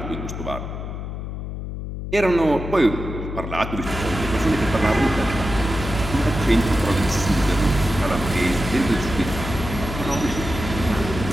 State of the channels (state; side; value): noise; left; hum, 7 dB below the sound